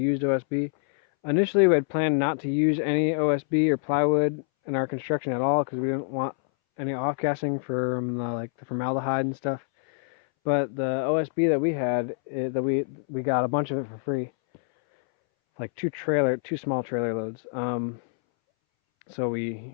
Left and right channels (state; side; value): silent; right; 61 dB below the other